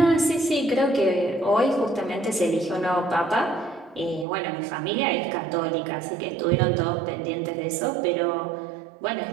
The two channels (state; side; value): drops out; left; at 4.2 s